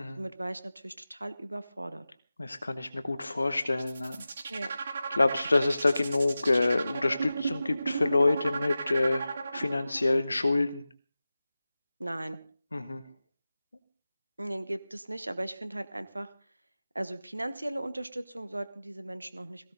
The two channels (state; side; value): inverted; both; correlation -0.95